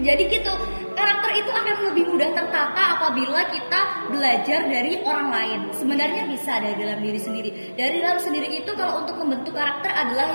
gitu, karakter itu akan lebih mudah tertata apabila kita belajar dari orang lain. Sebenarnya bisa dari dalam diri sendiri. Dari dalam sendiri itu kalau untuk membentuk karakter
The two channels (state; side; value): inverted; both; correlation -1.00